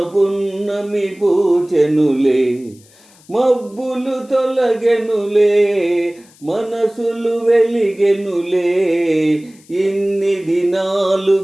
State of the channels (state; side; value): noise; left; hiss, 28 dB below the sound